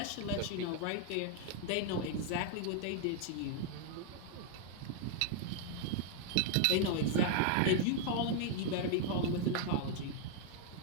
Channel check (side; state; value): both; different; correlation 0.00